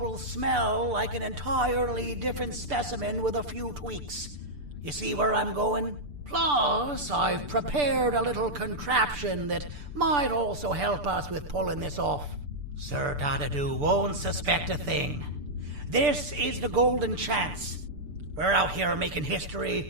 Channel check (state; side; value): late; left; 6.8 ms